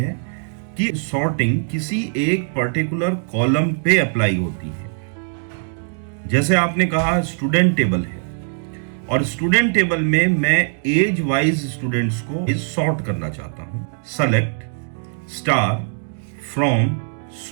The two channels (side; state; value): left; silent; 65 dB below the other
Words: कि सॉर्टिंग किसी एक पर्टिकुलर कॉलम पे अप्लाई होती है। जैसे आपने कहा स्टूडेंट टेबल है, और स्टूडेंट टेबल में मैं एज वाइज स्टूडेंट्स को सॉर्ट करना चाहता हूं। Select star from